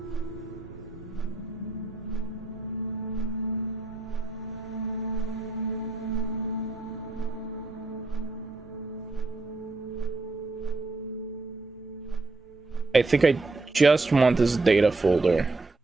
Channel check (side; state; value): left; quieter; 3.3 dB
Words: I think I just want this data folder.